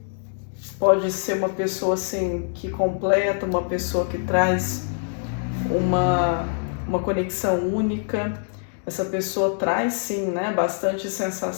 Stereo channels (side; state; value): right; silent; digital silence